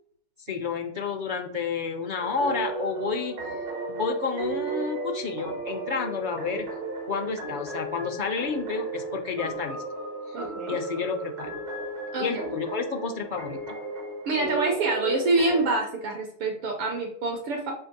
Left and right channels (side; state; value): left; late; 7.0 ms